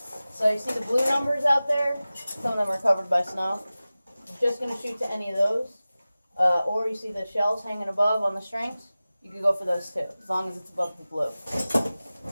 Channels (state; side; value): inverted; both; correlation -0.97